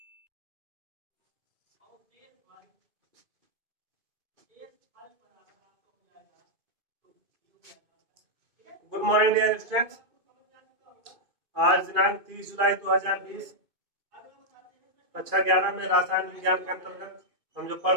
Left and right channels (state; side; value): late; left; 2.5 ms